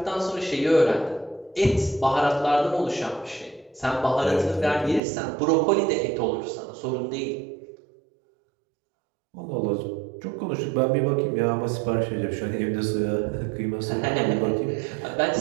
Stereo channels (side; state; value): left; drops out; at 5.0 s